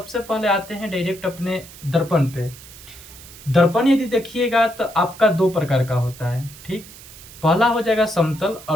पहले आते हैं डायरेक्ट अपने दर्पण पे। दर्पण यदि देखिएगा तो आपका दो प्रकार का होता है, ठीक। पहला हो जाएगा समतल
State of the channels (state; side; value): noise; right; hiss, 18 dB below the sound